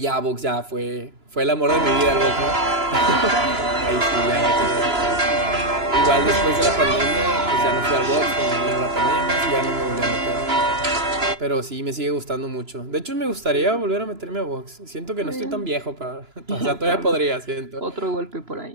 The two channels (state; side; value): late; left; 2.9 ms